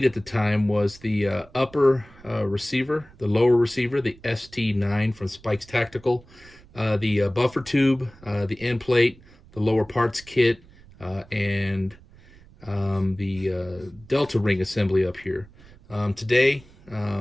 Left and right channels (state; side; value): noise; right; rumble, 24 dB below the sound